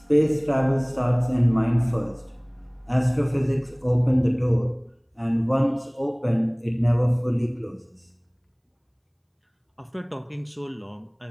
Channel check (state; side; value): identical; both; correlation 1.00